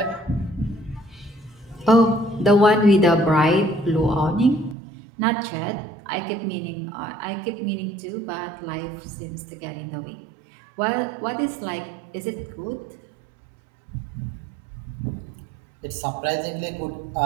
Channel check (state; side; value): drops out; left; at 4.8 s